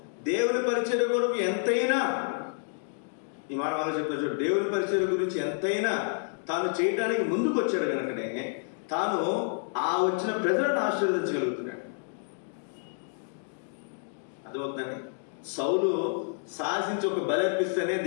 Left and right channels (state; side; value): silent; right; 58 dB below the other